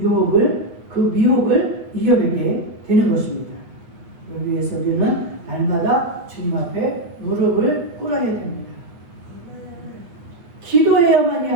유혹을 그 미혹을 이겨내게 되는 것입니다. 여기 위해서 우리는 날마다 주님 앞에 무릎을 꿇어야 됩니다. 기도해야만이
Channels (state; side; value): late; left; 8.6 ms